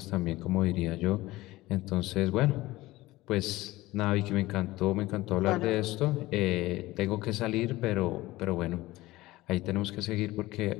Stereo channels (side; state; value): right; quieter; 18.4 dB